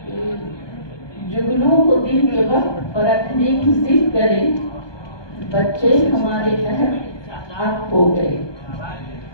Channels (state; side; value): late; right; 1.2 ms